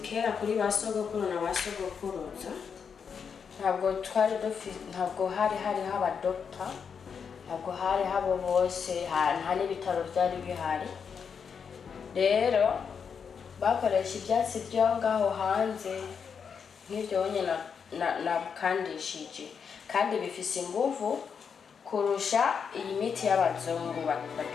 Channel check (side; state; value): right; quieter; 6.5 dB